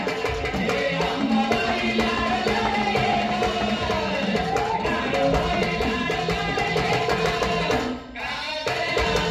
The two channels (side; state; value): both; identical; correlation 1.00